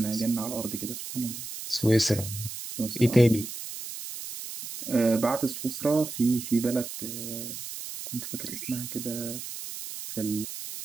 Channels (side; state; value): right; noise; hiss, 9 dB below the sound